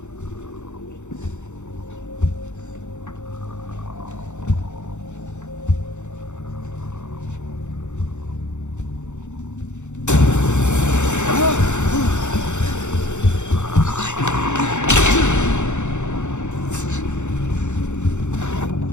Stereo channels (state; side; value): late; right; 0.84 ms